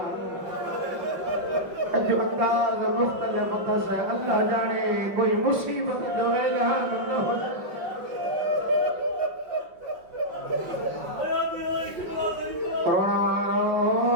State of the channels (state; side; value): late; left; 5.5 ms